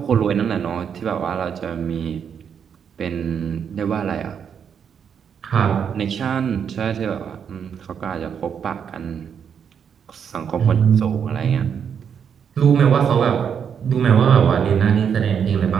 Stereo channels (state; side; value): quieter; left; 7.5 dB